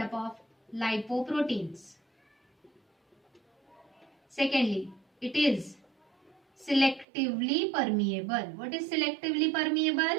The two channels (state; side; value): drops out; left; at 7.1 s